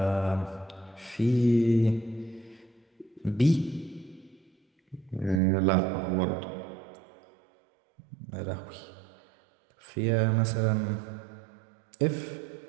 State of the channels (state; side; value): drops out; left; at 5.4 s